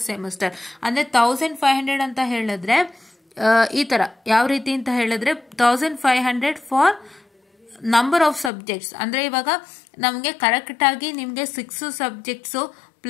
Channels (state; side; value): drops out; right; at 8.5 s